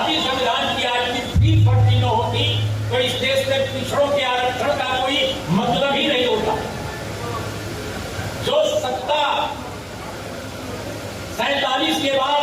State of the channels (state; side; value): identical; both; correlation 1.00